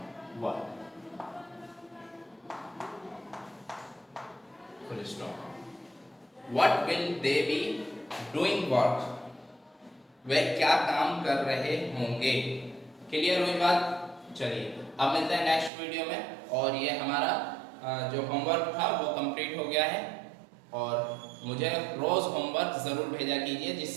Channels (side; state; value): left; drops out; at 15.7 s